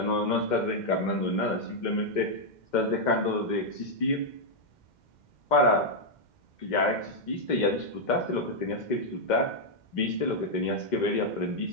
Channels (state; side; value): late; right; 2.1 ms